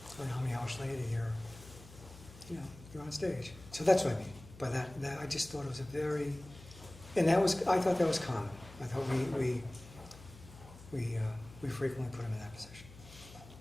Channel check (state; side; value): noise; left; hum, 18 dB below the sound